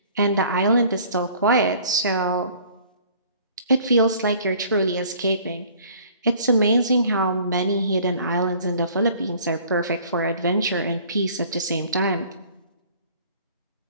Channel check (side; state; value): both; inverted; correlation -0.53